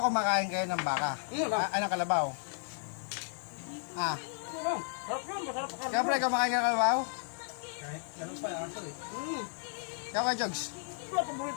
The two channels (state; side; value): silent; right; 55 dB below the other